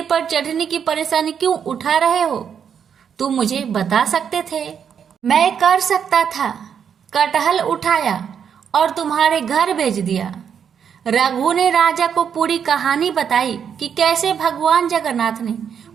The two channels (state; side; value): quieter; left; 7.7 dB